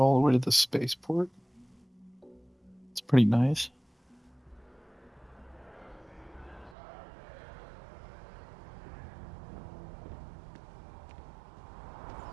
the way to the spaceport. It's pretty nice.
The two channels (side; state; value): left; drops out; at 6.8 s